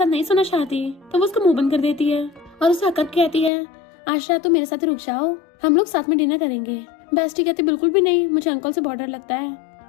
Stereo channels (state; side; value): drops out; right; at 3.5 s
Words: नहीं सोना चाहती। तो वो उसका मुंह बंद कर देती है और उसे हकत कहती है आज रात तुम मेरे साथ रुक जाओ, हम लोग साथ में डिनर करेंगे। बेस्टी कहती बिल्कुल भी नहीं, मुझे अंकल से बहुत डर लगता है।